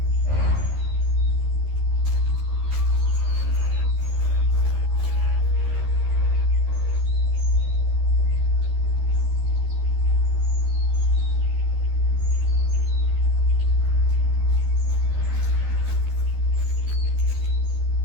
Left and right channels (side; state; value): left; late; 13 ms